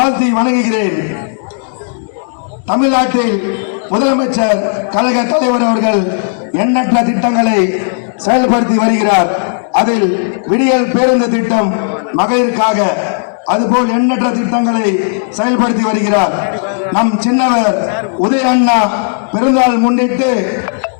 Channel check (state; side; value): silent; right; digital silence